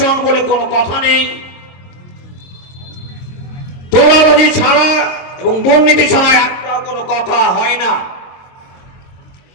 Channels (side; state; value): right; late; 22 ms